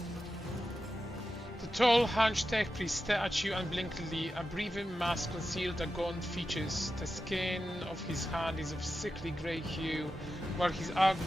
Tall, hunched tech priest stare at you unblinkingly. A breathing mask concealed the gaunt features. The skin of his hand is of sickly grey hue, while his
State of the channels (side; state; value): both; normal; correlation 0.91